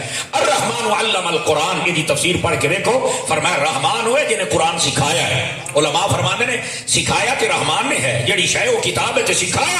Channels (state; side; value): identical; both; correlation 1.00